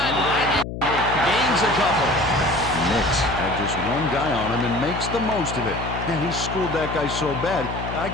and gains a couple. Nix had just one guy on him and makes the most of it. And he schooled that guy so bad, I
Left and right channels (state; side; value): noise; left; hum, 7 dB below the sound